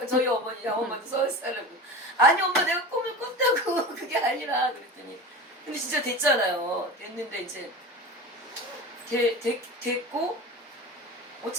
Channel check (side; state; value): both; normal; correlation 0.31